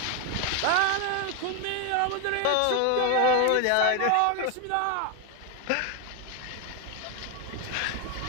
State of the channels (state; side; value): different; both; correlation 0.01